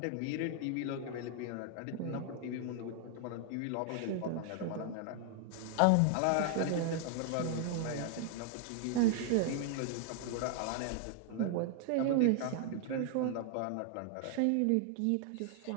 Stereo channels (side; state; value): both; different; correlation 0.00